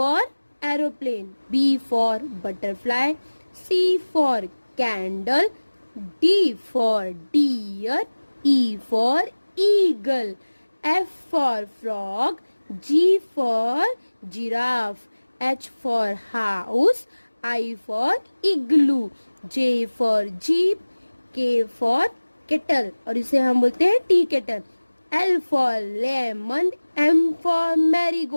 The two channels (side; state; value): both; inverted; correlation -1.00